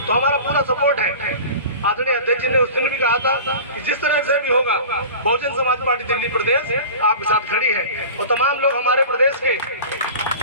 तो हमारा पूरा सपोर्ट है। आदरणीय अध्यक्ष जी ने उस दिन भी कहा था कि जिस तरह से भी होगा बहुजन समाज पार्टी दिल्ली प्रदेश आपके साथ खड़ी है। और तमाम लोग हमारे प्रदेश के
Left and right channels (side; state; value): both; inverted; correlation -0.37